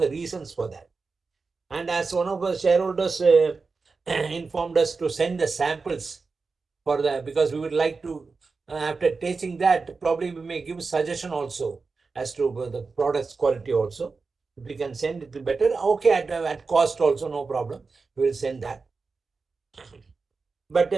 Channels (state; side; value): quieter; left; 4.4 dB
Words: reasons for that? And as one of our shareholders informed us to send the samples for that, because we would like to, after tasting that, probably we may give suggestion also as to the product's quality also. If we can send it better, okay, at cost also, no problem. We will send that. But